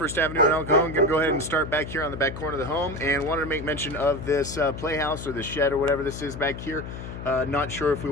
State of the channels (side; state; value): left; noise; hum, 9 dB below the sound